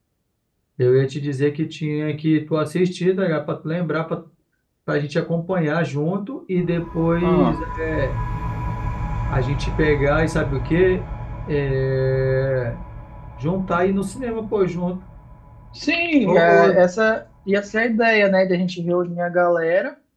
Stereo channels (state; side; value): identical; both; correlation 1.00